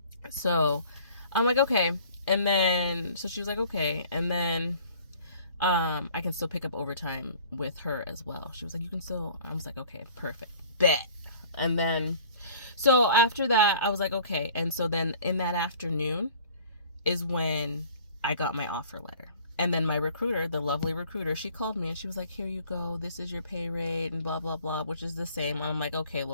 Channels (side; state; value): both; inverted; correlation -0.51